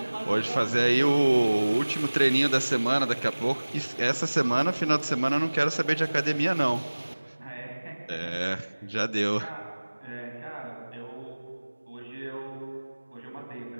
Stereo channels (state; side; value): inverted; both; correlation -1.00